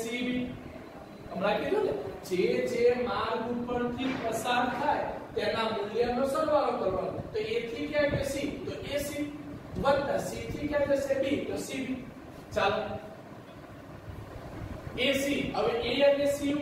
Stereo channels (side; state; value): both; identical; correlation 1.00